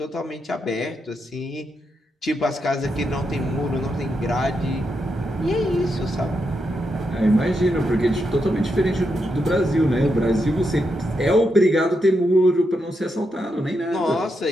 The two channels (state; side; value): normal; both; correlation 0.83